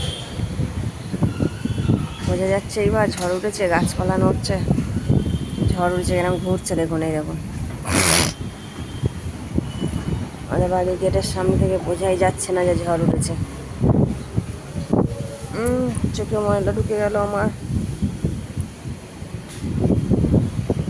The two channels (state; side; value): identical; both; correlation 1.00